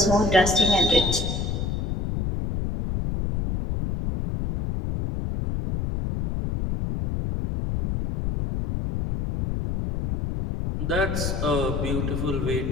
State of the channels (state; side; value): noise; left; rumble, 2 dB below the sound